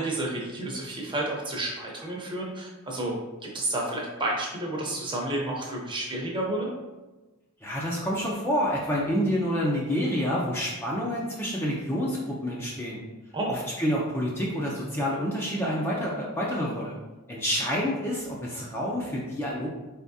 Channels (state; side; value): normal; both; correlation 0.39